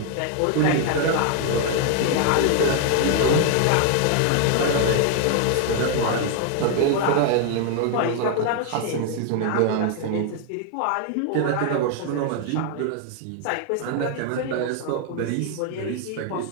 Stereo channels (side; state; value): both; different; correlation 0.00